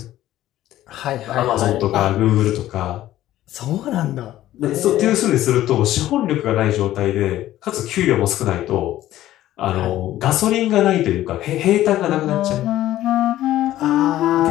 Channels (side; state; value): right; quieter; 14.0 dB